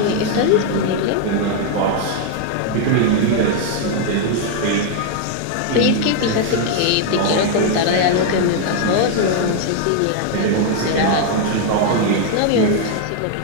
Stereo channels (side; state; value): both; different; correlation 0.00